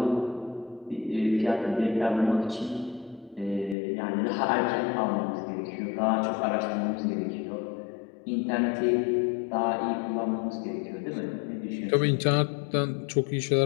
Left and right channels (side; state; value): right; drops out; at 3.8 s